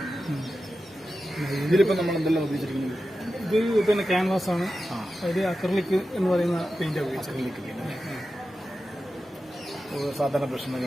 ഇതിലിപ്പോൾ നമ്മൾ എന്തെല്ലാം ഉപയോഗിച്ചിരിക്കുന്നത്? ഇത് പിന്നെ ക്യാൻവാസ് ആണ്. അതിൽ അക്രലിക് എന്ന് പറയുന്ന പെയിന്റ് ഉപയോഗിച്ചത്.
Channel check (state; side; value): normal; both; correlation 0.92